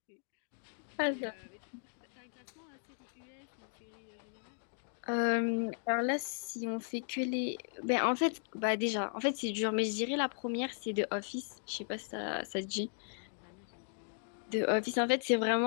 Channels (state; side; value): silent; right; digital silence